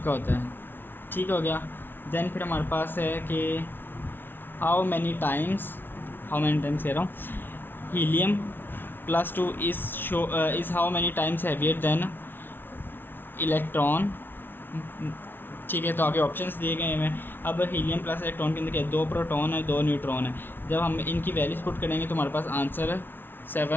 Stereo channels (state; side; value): late; right; 0.10 ms